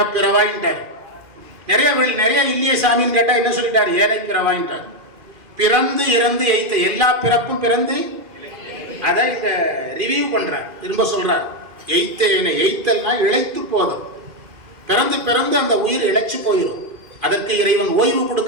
பிறவாயின்ட்டார். நிறைய இல்லையே சாமின்னு கேட்டா என்ன சொல்லிட்டாரு? ஏனை பிறவாயின்ட்டார். பிறந்து இறந்து எய்த்த, எல்லா பிறப்பும் பிறந்து, அதை இந்த ரிவ்யூ பண்றார், திரும்ப சொல்றார். எய்த்தேனை, எய்த்தல்னா இழைத்து போதும். பிறந்து பிறந்து அந்த உயிர் இழைச்சு போயிடும். அதற்கு இறைவன் ஓய்வு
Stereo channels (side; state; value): left; late; 2.5 ms